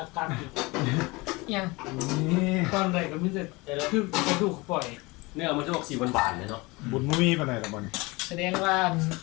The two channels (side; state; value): right; quieter; 24.1 dB